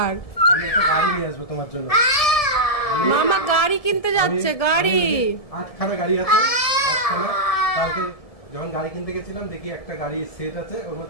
আমি একটা গাড়ি নিয়ে আসবো তোমার জন্য। মামা গাড়ি কিনতে যাচ্ছে। গাড়ি 8খানা গাড়ি আছে, 8খানা। কালকে যখন গাড়ি কিনতে গেছিলাম দেখি একটা গাড়ি সেট আছে, ওর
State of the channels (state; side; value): late; right; 1.7 ms